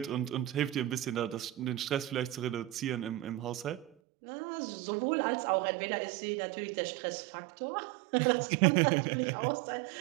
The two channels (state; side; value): drops out; left; at 3.9 s